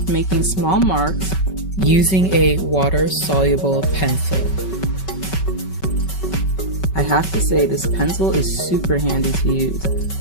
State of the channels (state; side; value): late; right; 5.3 ms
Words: making small marks using a water-soluble pencil. I have to say this pencil is super handy to use.